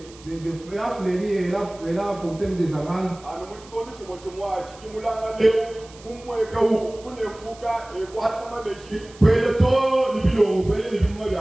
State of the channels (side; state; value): right; noise; hiss, 22 dB below the sound